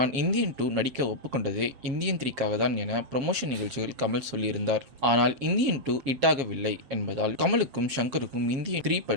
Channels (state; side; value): late; left; 7.4 ms